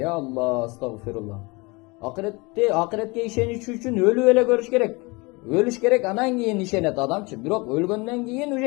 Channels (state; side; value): quieter; right; 26.2 dB